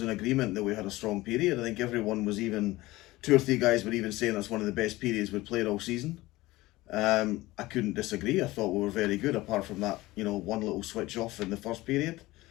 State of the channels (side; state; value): right; quieter; 19.0 dB